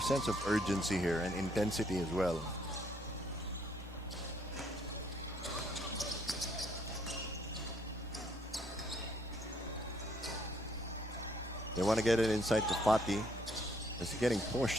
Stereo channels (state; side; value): normal; both; correlation 0.68